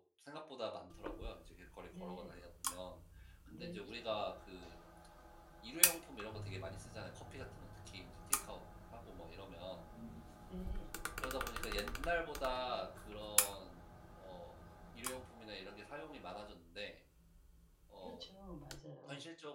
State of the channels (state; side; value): identical; both; correlation 1.00